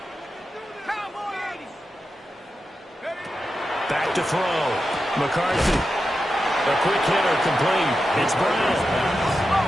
Back to throw. McCarthy. A quick hitter complete. It's Brown.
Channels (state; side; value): normal; both; correlation 0.90